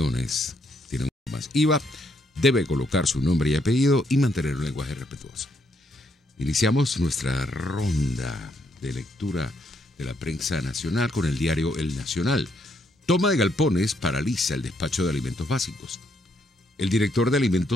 Tiene un más IVA. Debe colocar su nombre y apellido y mantener un lenguaje respetuoso. Iniciamos nuestra ronda de lectura de la prensa nacional con el diario El Nacional. Toma de galpones paraliza el despacho de alimentos básicos. El director de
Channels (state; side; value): normal; both; correlation 0.74